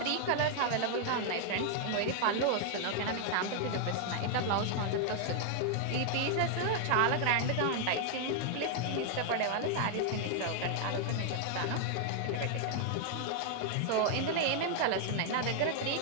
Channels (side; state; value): both; different; correlation 0.00